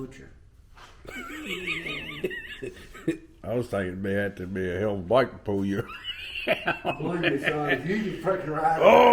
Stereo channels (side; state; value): both; identical; correlation 1.00